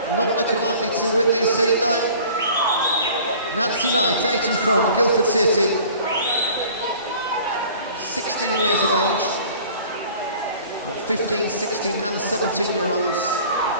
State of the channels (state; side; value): inverted; both; correlation -0.47